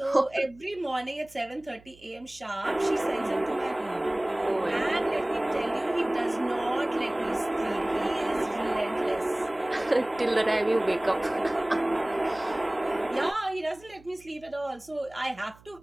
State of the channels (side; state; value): right; noise; hum, 25 dB below the sound